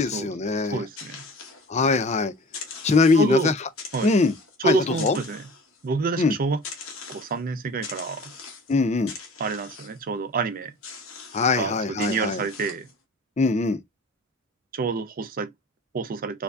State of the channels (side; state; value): both; normal; correlation 0.41